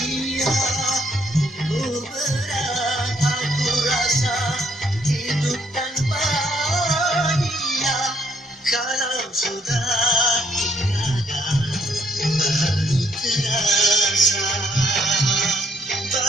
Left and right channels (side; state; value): both; normal; correlation 0.70